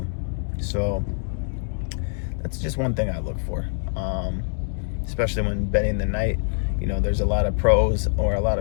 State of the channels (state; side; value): silent; right; digital silence